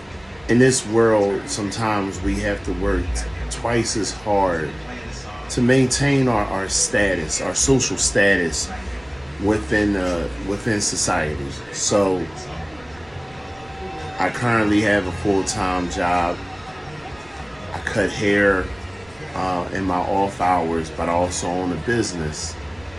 In this world, sometimes we have to work twice as hard to maintain our status, our social status within society. So I currently have a full-time job. I cut hair in my off hours, but I also own a business.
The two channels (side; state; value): right; noise; rumble, 26 dB below the sound